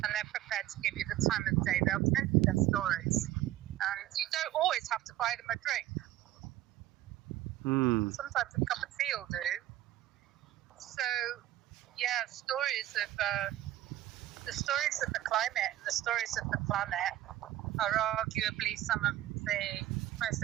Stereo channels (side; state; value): left; quieter; 14.1 dB